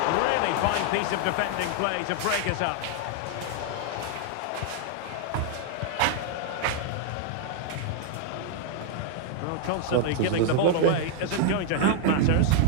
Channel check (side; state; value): both; different; correlation 0.00